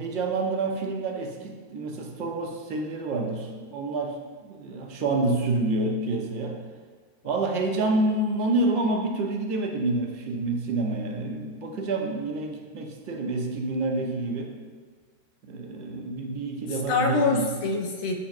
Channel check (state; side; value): late; right; 13 ms